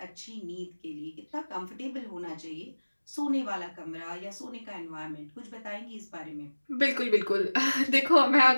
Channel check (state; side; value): inverted; both; correlation -1.00